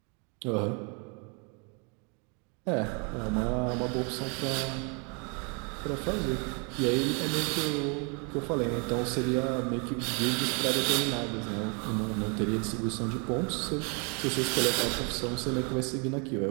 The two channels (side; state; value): left; quieter; 35.1 dB